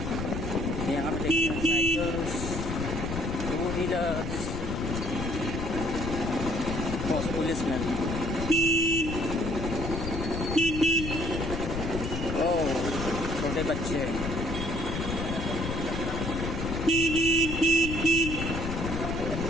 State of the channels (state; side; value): noise; left; rumble, 4 dB below the sound